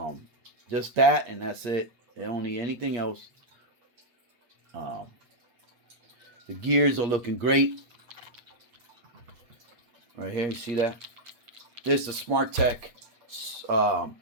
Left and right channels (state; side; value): late; left; 8.5 ms